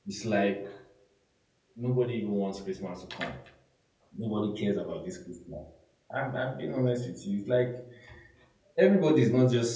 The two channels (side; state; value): both; identical; correlation 1.00